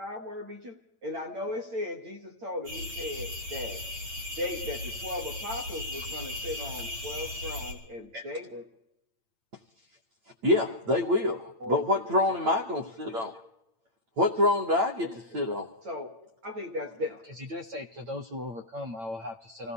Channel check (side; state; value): left; late; 8.9 ms